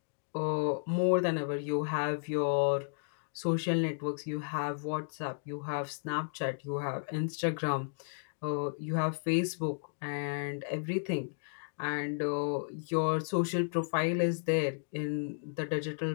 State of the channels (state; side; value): silent; right; digital silence